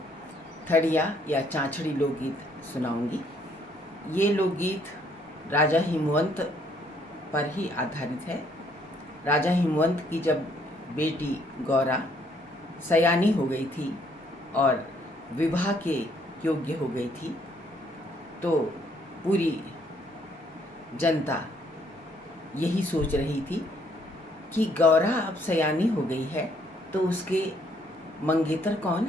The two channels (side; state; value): both; normal; correlation 0.67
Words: थड़िया या चाँचड़ी लोकगीत सुनाऊंगी। ये लोकगीत राजा हिमवंत पर ही आधारित है। राजा हिमवंत की जब बेटी गौरा सयानी हो गई थी और विवाह के योग्य हो गई थी, तो पूरी जनता यही सोच रही थी कि गौरा अब सयानी हो गई है तो उसके मंगेतर कौन